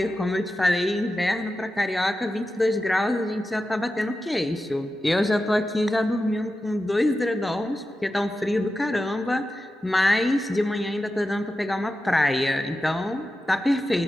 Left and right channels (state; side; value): normal; both; correlation 0.92